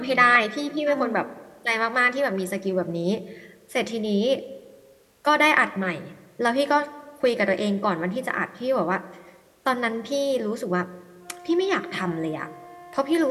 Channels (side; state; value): both; identical; correlation 1.00